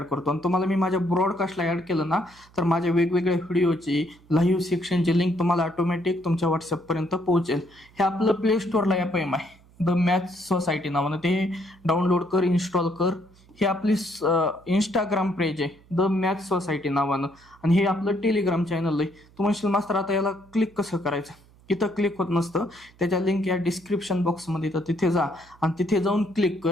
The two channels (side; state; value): right; noise; hum, 27 dB below the sound